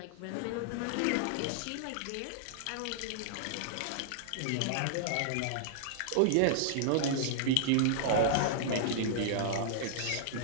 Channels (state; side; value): different; both; correlation -0.01